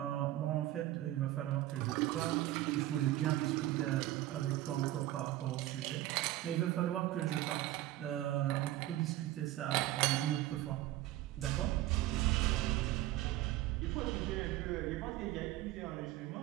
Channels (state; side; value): quieter; left; 15.1 dB